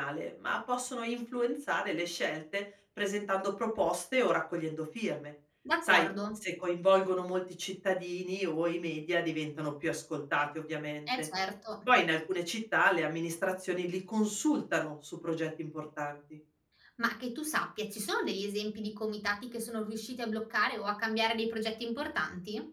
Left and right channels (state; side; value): identical; both; correlation 1.00